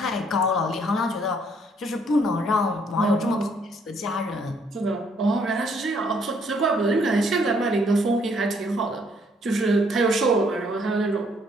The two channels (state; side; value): normal; both; correlation 0.67